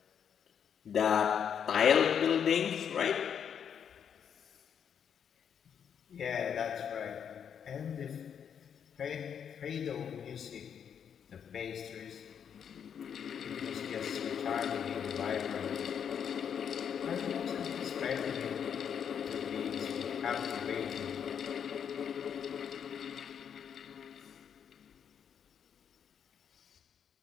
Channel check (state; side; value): quieter; right; 7.9 dB